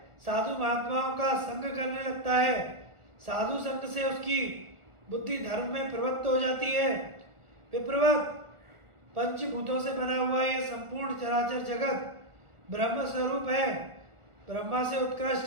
साधु महात्माओं का संग करने लगता है। साधु संग से उसकी बुद्धि धर्म में प्रवृत्त हो जाती है। विप्रवत पंचभूतों से बना हुआ यह संपूर्ण चराचर जगत ब्रह्म स्वरूप है। ब्रह्म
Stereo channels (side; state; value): left; late; 1.4 ms